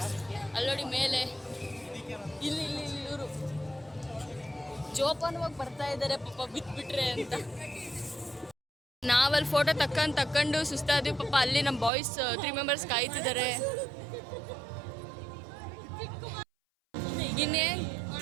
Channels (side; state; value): left; drops out; at 11.9 s